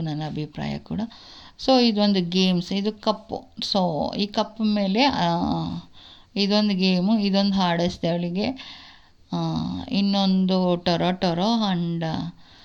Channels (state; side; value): identical; both; correlation 1.00